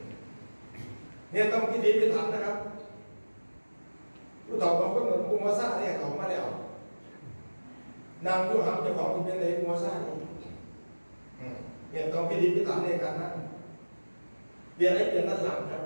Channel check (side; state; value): both; inverted; correlation -1.00